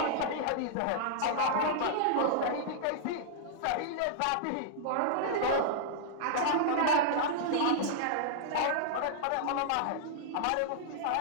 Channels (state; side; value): different; both; correlation -0.01